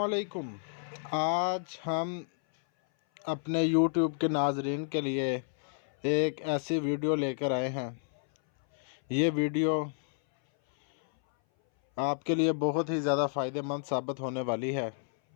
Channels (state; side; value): silent; right; 57 dB below the other